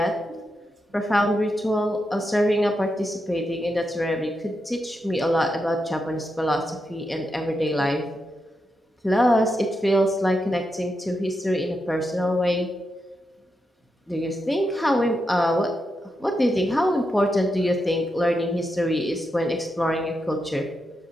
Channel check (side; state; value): both; normal; correlation 0.86